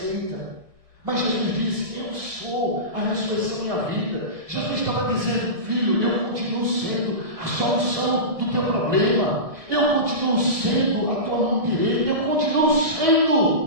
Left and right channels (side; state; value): left; late; 1.6 ms